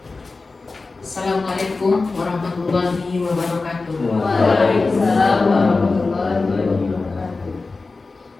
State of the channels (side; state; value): right; quieter; 3.8 dB